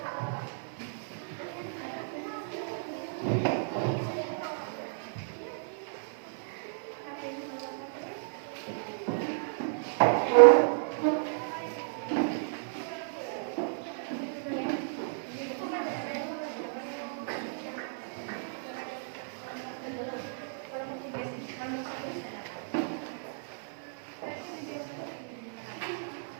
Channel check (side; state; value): left; silent; 56 dB below the other